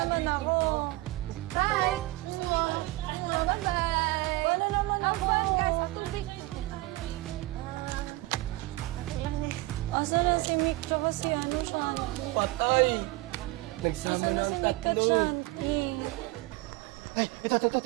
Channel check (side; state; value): left; quieter; 19.8 dB